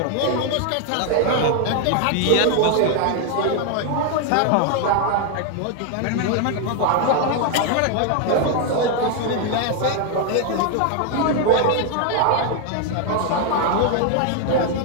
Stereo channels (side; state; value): both; different; correlation 0.01